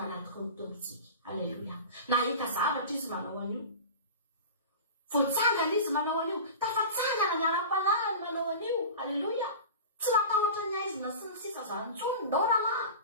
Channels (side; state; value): both; inverted; correlation -0.32